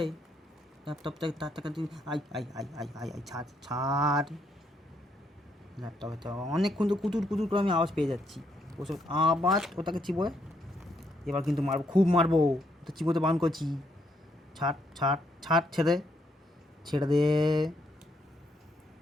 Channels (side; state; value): both; normal; correlation 0.75